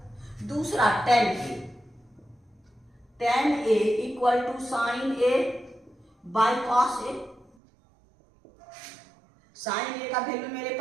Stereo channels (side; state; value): left; drops out; at 7.6 s